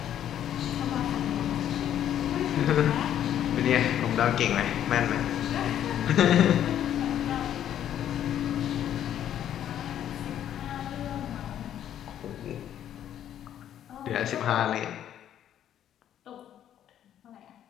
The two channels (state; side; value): quieter; right; 10.6 dB